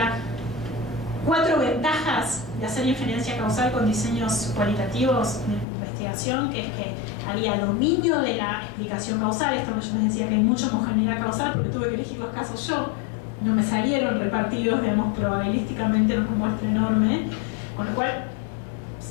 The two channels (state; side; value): drops out; right; at 5.7 s